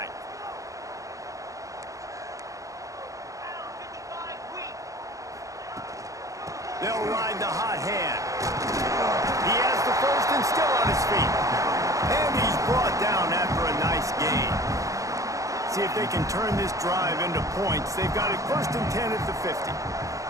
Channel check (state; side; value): late; left; 0.16 ms